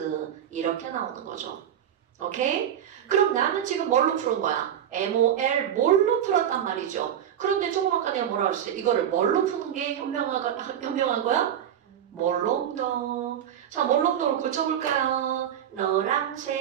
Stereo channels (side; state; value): left; quieter; 9.8 dB